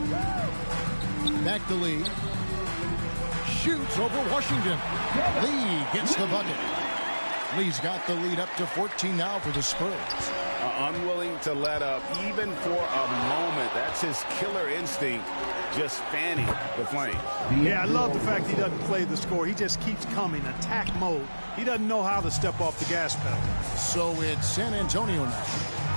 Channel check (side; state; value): both; inverted; correlation -1.00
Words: Back to Lee. Shoots over Washington. Lee gets the bucket. Lee's got the lead up to 14 now for the Spurs. Unwilling to let up even for a moment. That's his killer instinct, just fanning the flame. Yeah, I love the fact he doesn't play the score. He just keeps coming, attack mode. He doesn't know how to step off the gas pedal. So it's San Antonio now,